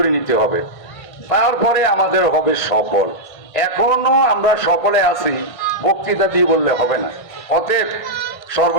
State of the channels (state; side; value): late; right; 1.5 ms